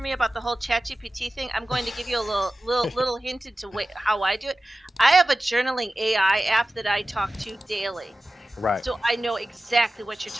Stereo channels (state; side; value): normal; both; correlation 0.95